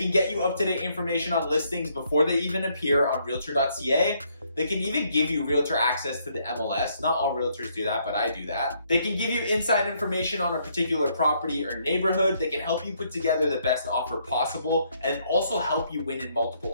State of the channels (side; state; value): both; inverted; correlation -0.71